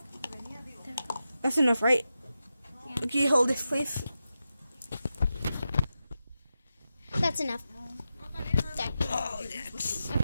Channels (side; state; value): both; inverted; correlation -0.90